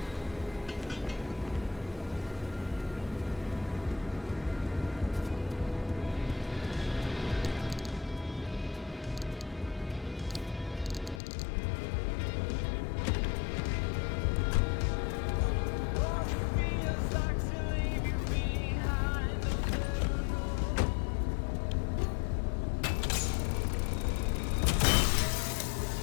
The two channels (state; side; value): drops out; right; at 11.2 s